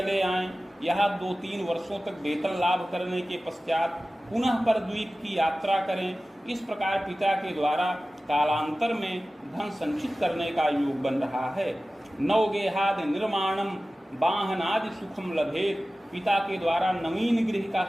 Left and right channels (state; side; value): normal; both; correlation 0.96